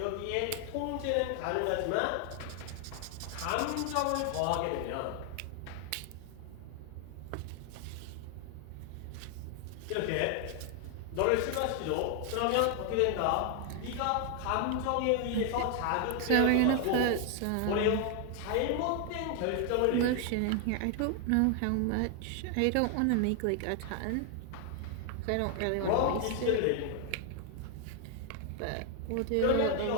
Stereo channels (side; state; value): both; different; correlation 0.00